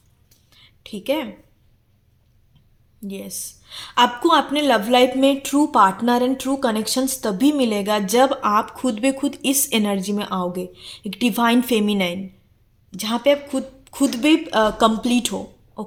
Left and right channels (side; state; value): both; identical; correlation 1.00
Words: ठीक है। यस, आपको अपने लव लाइफ में true partner and true connections तभी मिलेगा जब आप खुद बे खुद इस एनर्जी में आओगे, एक डिवाइन फेमिनाइन, जहाँ पे आप खुद खुद भी कंप्लीट हो,